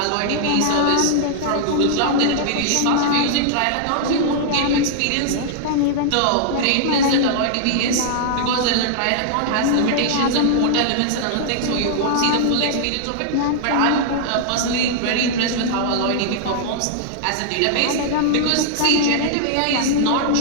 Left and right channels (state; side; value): different; both; correlation -0.01